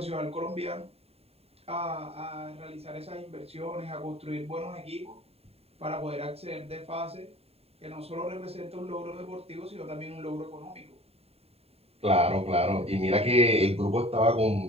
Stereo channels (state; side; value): late; left; 0.29 ms